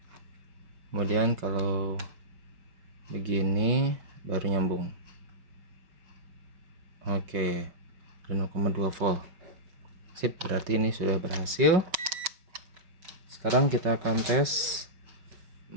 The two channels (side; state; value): left; late; 5.2 ms